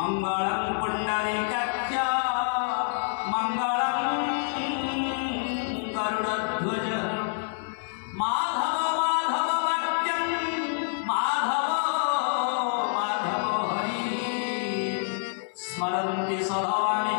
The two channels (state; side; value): silent; right; 60 dB below the other